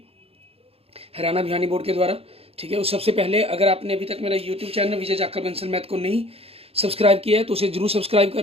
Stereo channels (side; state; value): left; late; 0.28 ms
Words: हरियाणा बिहानी बोर्ड के द्वारा। ठीक है, उस सबसे पहले अगर आपने अभी तक मेरा यूट्यूब चैनल विजय जाखड़ बंसल मैथ को नहीं सब्सक्राइब किया है तो उसे जरूर सब्सक्राइब